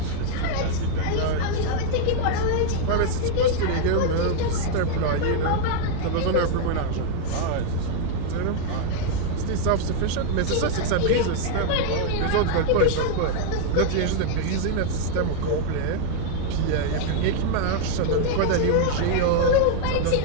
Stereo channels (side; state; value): both; different; correlation 0.00